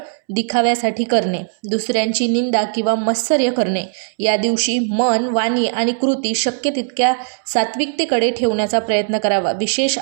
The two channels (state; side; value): silent; left; 67 dB below the other